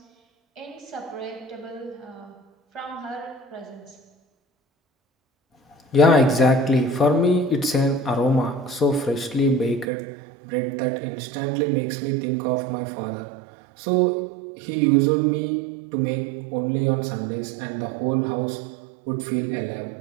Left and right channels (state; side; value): drops out; left; at 9.9 s